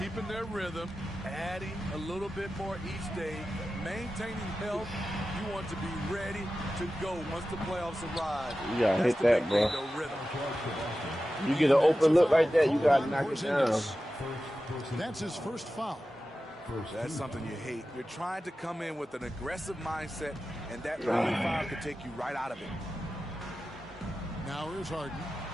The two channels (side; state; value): both; normal; correlation 0.94